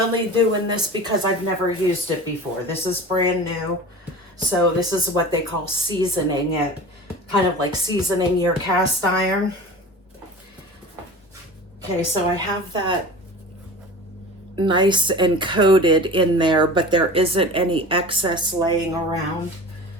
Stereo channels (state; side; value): normal; both; correlation 0.35